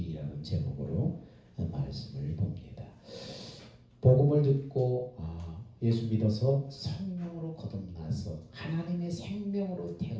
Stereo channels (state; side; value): identical; both; correlation 1.00